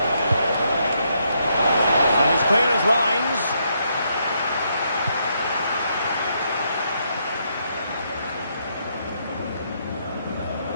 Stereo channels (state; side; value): inverted; both; correlation -0.76